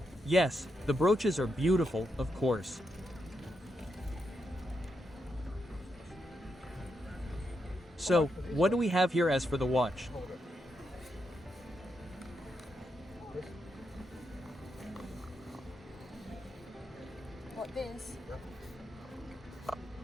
Yes, the brooches are beautiful, of course. So, what do we have here as for the watch? What this?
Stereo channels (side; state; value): both; normal; correlation 0.83